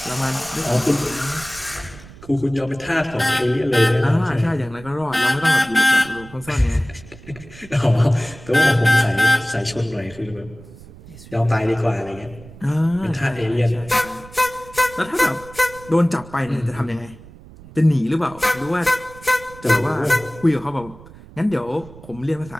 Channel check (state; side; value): noise; right; rumble, 19 dB below the sound